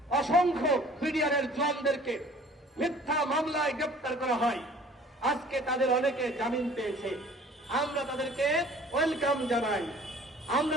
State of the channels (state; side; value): normal; both; correlation 0.50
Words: অসংখ্য বিডিআরের জওয়ানদেরকে মিথ্যা মামলায় গ্রেপ্তার করা হয়। আজকে তাদের অনেকে জামিন পেয়েছে, আমরা তাদেরকে ওয়েলকাম জানাই। আমরা